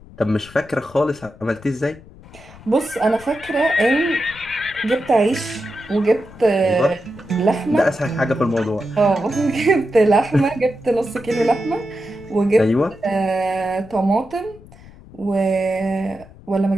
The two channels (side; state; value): left; noise; rumble, 21 dB below the sound